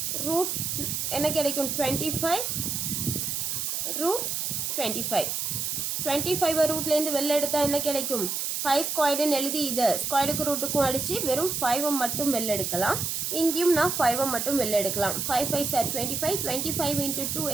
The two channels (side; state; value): right; noise; hiss, 1 dB below the sound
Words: ரூட் என்ன கிடைக்கும்? 25 ரூட் 25. 25 ரூட்லேருந்து வெளில எடுத்தால் என்ன கிடைக்கும்? 5 ஸ்கொயர்டுன்னு எழுதி இதை ஸ்கொயர்டுக்கு ரூட்டுக்கும் அடித்து வெறும் 5 மட்டும் வெளில எடுக்கலாம். இங்கேயும் நான் 5 மட்டும் வெளில எடுக்கலாம். 5 5 சார் 25 25 into 2